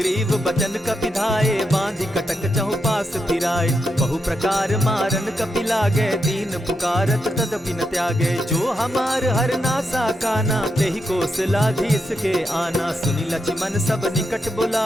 बचन कपि धाये, बांधि कटक चहु पास फिराए। बहु प्रकार मारन कपि लागे, दीन पुकारत तदपि न त्यागे। जो हमार हर नासा काना, तेहि कौशलाधीश के आना। सुनि लक्ष्मण सब निकट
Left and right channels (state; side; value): normal; both; correlation 0.84